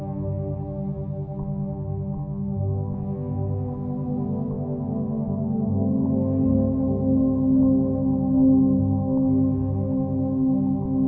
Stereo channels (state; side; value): identical; both; correlation 1.00